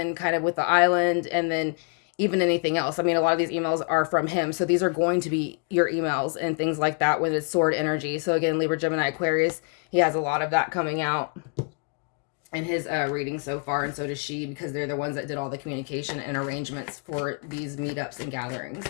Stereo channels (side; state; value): right; quieter; 38.8 dB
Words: kind of with the island, and then even anything else. I mean, a lot of these emails are from him. So these are going to be your emails and things like that when it's sword energy. So again, Libra, Gemini, Aquarius, he has a lot of that coming out in his reading so far. And so does she, because they're the ones that did all the communication and arrangements for these meetups and gatherings.